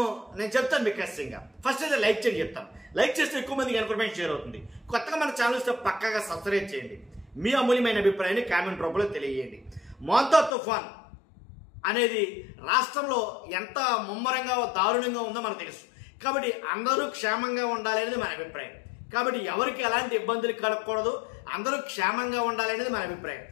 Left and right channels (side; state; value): right; drops out; at 10.5 s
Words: నేను చెప్తాను మీకు ఖచ్చితంగా. ఫస్ట్ అయితే లైక్ చేయండి చెప్తాను. లైక్ చేస్తే ఎక్కువ మందికి ఇన్ఫర్మేషన్ షేర్ అవుతుంది. కొత్తగా మన ఛానల్ ఇస్తే పక్కాగా సబ్స్క్రైబ్ చేయండి. మీ అమూల్యమైన అభిప్రాయాన్ని కామెంట్ రూపంలో తెలియజేయండి. మోంతా తుఫాన్ అనేది రాష్ట్రంలో ఎంత ముమ్మరంగా దారుణంగా ఉందో మనకు తెలుసు. కాబట్టి అందరూ క్షేమంగా ఉండాలి అనేది మన అభిప్రాయం. కాబట్టి ఎవరికి ఎలాంటి ఇబ్బందులు కలగకూడదు, అందరూ క్షేమంగా ఉండాలి అనేది మన అభిప్రాయం.